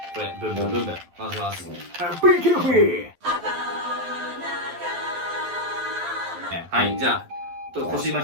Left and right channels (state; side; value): late; left; 12 ms